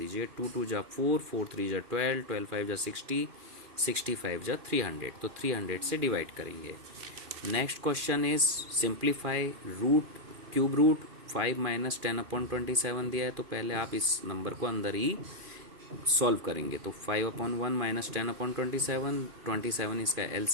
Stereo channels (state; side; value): late; left; 2.4 ms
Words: 2 2 जा 4 4 3 जा 12 12 5 जा 60 65 जा 300, तो 300 से डिवाइड करेंगे। Next question is simplify root cube root 5 minus 10/27 दिया है, तो पहले आप इस नंबर को अंदर ही सॉल्व करेंगे। तो 5/1 माइनस 10/27, 27 इसका